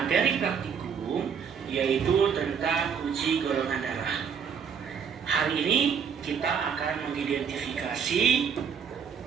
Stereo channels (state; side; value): quieter; left; 6.9 dB